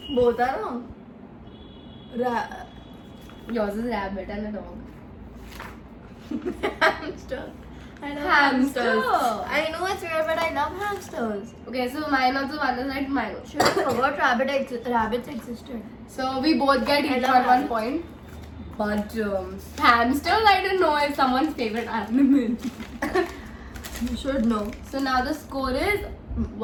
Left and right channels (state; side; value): identical; both; correlation 1.00